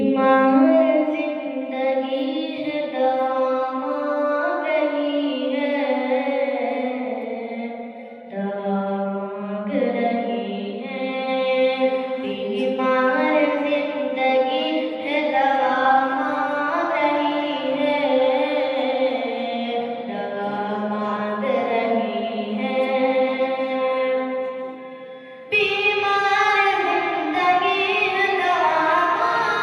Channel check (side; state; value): both; identical; correlation 1.00